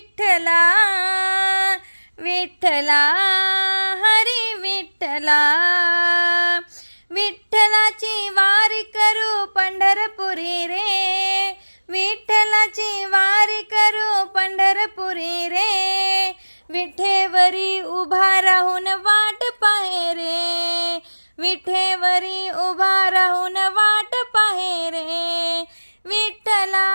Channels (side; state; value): both; inverted; correlation -1.00